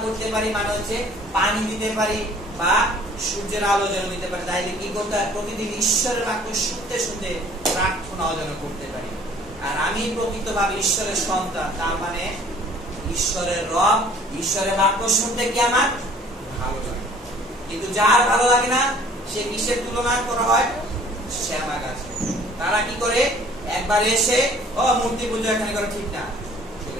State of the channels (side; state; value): both; normal; correlation 0.54